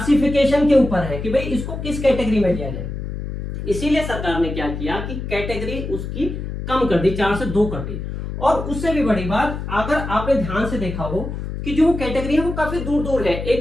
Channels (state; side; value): noise; left; hum, 6 dB below the sound